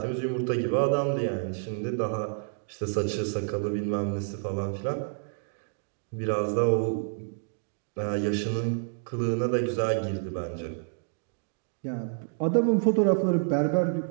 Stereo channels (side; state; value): left; silent; digital silence